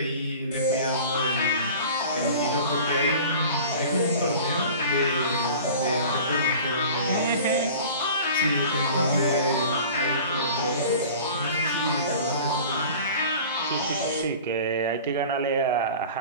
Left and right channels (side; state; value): both; inverted; correlation -0.41